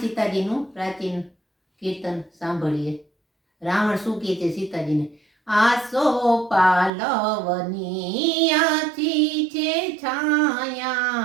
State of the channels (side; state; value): left; drops out; at 6.9 s